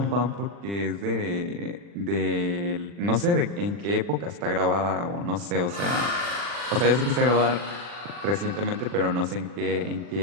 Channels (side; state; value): left; late; 40 ms